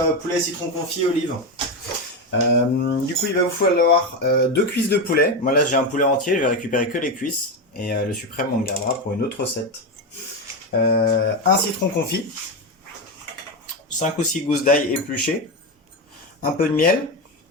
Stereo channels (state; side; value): normal; both; correlation 0.13